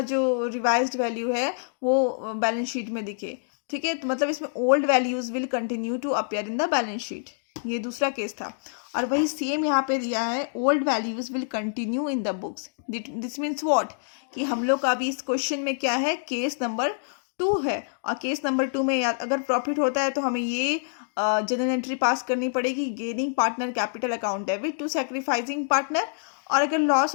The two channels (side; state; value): right; silent; digital silence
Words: जो रिवाइज्ड वैल्यू है वो बैलेंस शीट में दिखे. ठीक है, तो मतलब इसमें old values will continue to appear in the balance sheet, ये दूसरा केस था. और वही सेम यहाँ पे दिया है, old values will continue in the books. This means what, कि हम लोग का अभी इस क्वेश्चन में क्या है, केस नंबर 2 है. और केस नंबर 2 में अगर प्रॉफिट होता है तो हमें ये जनरल एंट्री पास करनी पड़ेगी, gaining partner capital account debit to sacrificing partner. और अगर